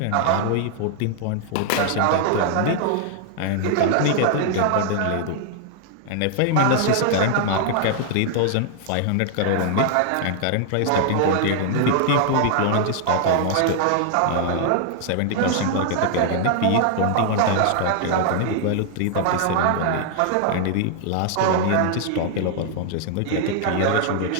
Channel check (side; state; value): both; different; correlation 0.00